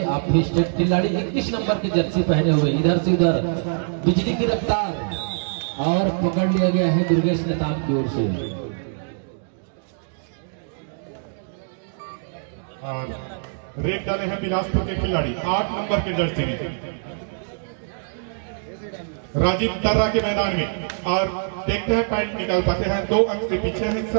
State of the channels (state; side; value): silent; left; digital silence